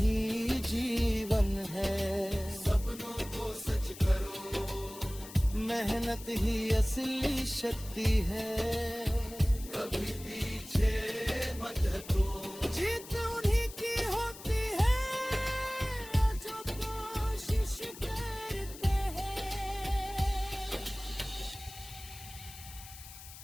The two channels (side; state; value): left; noise; hiss, 15 dB below the sound